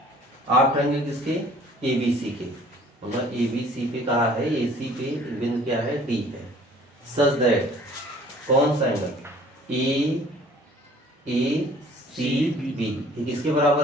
आर्क ट्रायंगल किसके, एबीसी के, मतलब एबीसी पे कहा है, एसी पे बिंदु क्या है, डी है। सच दैट कौन सा एंगल, ए सी बी, ये किसके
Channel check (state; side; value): normal; both; correlation 0.53